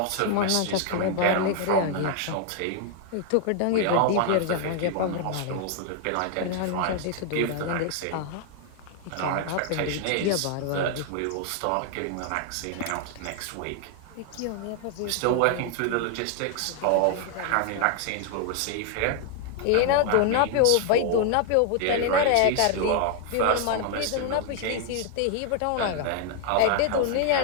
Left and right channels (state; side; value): different; both; correlation 0.00